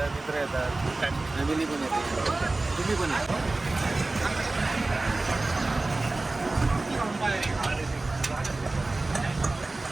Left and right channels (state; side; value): quieter; left; 3.1 dB